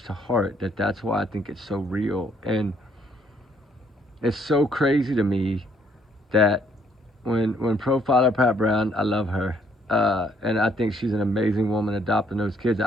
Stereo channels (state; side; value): normal; both; correlation 0.67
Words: to heart that's why I think it's so real. And it's so crazy to me that when profiler Pat Brown, I love her, and I think she's an amazing woman adopting those kids.